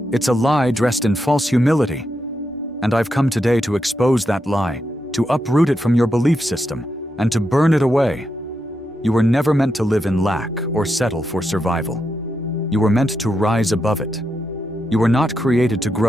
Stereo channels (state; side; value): normal; both; correlation 0.84